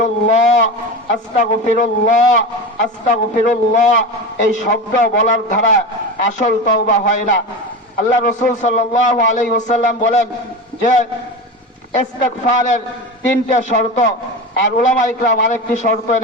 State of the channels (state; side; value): normal; both; correlation 0.25